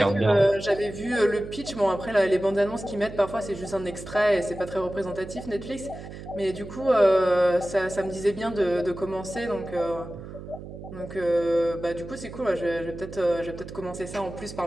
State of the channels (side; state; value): right; noise; hum, 12 dB below the sound